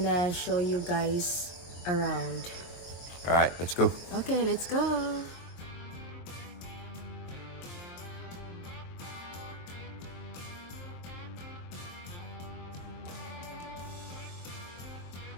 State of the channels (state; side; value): late; right; 23 ms